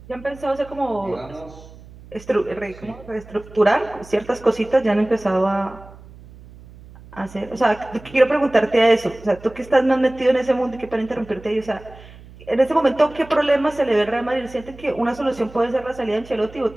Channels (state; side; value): noise; right; hum, 20 dB below the sound